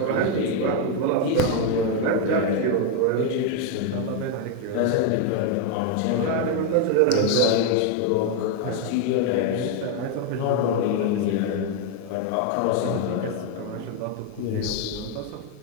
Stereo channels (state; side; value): different; both; correlation 0.01